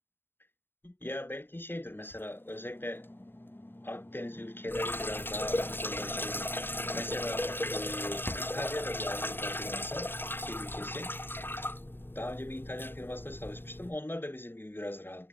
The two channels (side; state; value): right; late; 0.10 ms